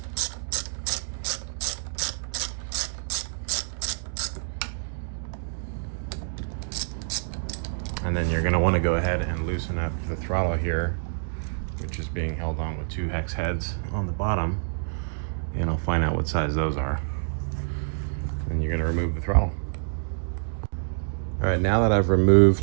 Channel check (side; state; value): left; silent; digital silence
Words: And then you're gonna wanna go ahead and loosen up the throttle here, which is being held on with 2 hex heads on the bottom. And I'll find out what size those are. And you're gonna remove the throttle. All right, now that I've